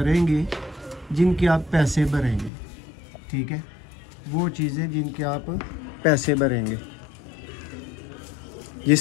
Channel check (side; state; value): right; drops out; at 2.5 s